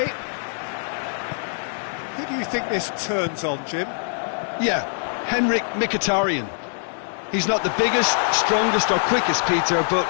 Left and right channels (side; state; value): right; silent; 63 dB below the other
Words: Who do you think this turns on, Jim? Yeah, Henrik Mkhitaryan. He's not the biggest, strongest or quickest, Peter, but